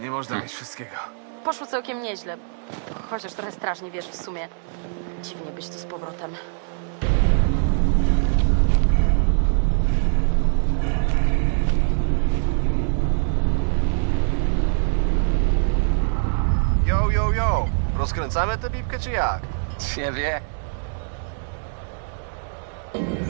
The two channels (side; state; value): left; silent; digital silence